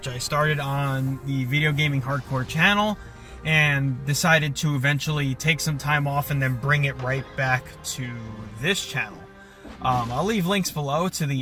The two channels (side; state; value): both; identical; correlation 1.00